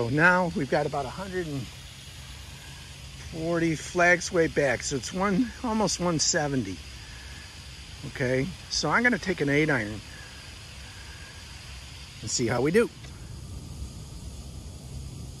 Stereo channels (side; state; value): both; identical; correlation 1.00